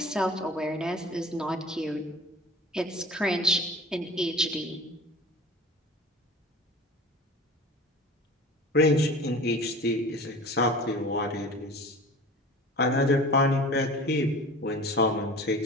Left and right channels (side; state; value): both; normal; correlation 0.40